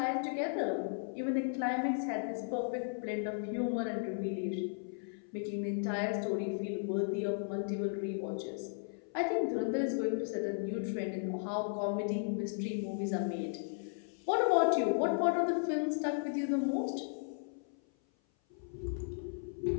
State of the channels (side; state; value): right; silent; 54 dB below the other